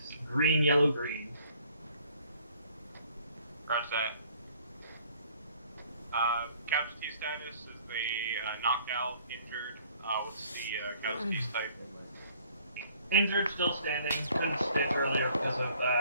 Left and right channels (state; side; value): inverted; both; correlation -0.58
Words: green, yellow, green. Roger that. Casualty status is the knocked out, injured. What's the casualties type? Injured, still standing. Couldn't stitch earlier because of